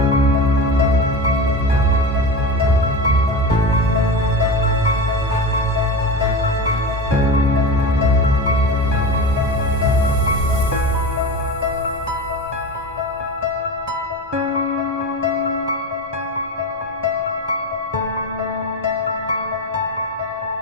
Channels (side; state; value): both; normal; correlation 0.26